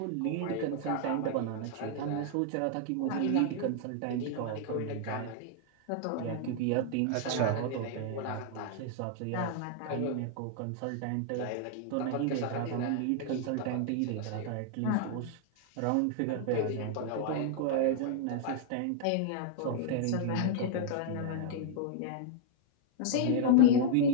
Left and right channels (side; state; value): both; different; correlation -0.01